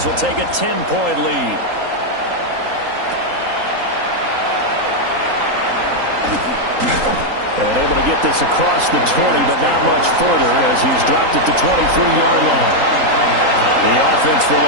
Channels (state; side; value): late; left; 3.8 ms